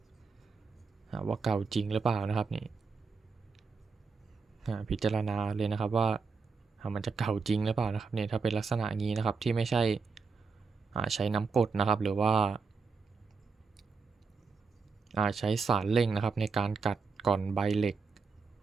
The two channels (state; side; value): quieter; left; 4.8 dB